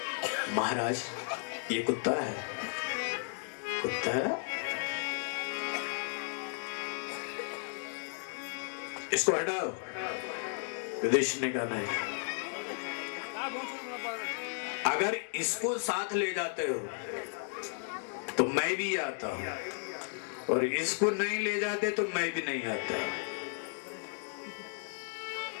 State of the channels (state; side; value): silent; right; 55 dB below the other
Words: महाराज ये कुत्ता है। कुत्ता है? इसको हटाओ। युधिष्ठिर ने कहा नहीं, अगर इसको साथ ले जाते हो तो मैं भी आता हूं, और इसको नहीं ले जाते तो मैं भी नहीं आता।